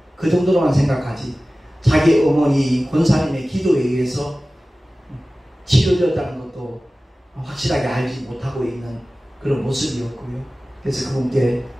그 정도로만 생각하지 자기 어머니 권사님의 기도에 의해서 치료되었다는 것도 확실하게 알지 못하고 있는 그런 모습이었고요. 그래서 그분께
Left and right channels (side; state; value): both; normal; correlation 0.96